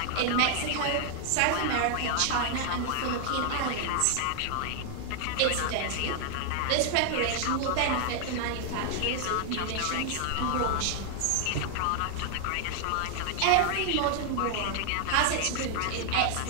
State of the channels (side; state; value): both; different; correlation 0.00